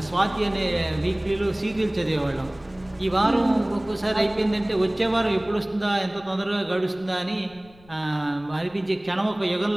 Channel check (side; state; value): left; noise; rumble, 25 dB below the sound